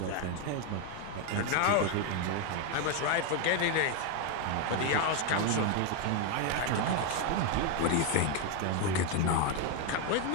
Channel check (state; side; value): different; both; correlation 0.01